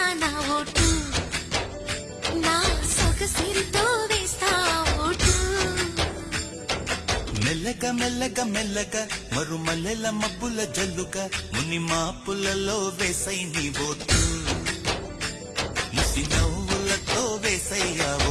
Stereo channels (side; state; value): both; identical; correlation 1.00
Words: నా ఓటు, నా సొగసిరితో వేస్తా ఓటు. మెల్లగా మెల్లగా మెల్లగా మరుమల్లెల మబ్బుల జల్లుగా ముని మాపులలో వేసై నీ ఓటు, ముసి నవ్వులతో వేసయ్యా